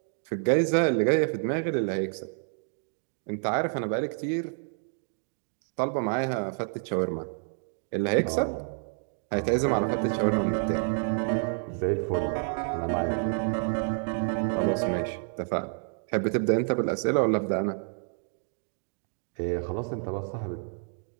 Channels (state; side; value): silent; left; 59 dB below the other